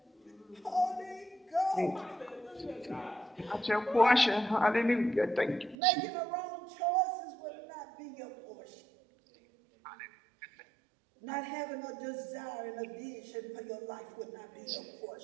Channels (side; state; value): left; drops out; at 5.8 s